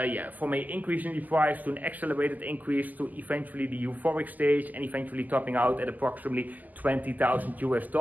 increase in the price to an accelerated increase to eventually the euphoric stage, and eventually topping out at approximately 20,000 US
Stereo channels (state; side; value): late; left; 0.082 ms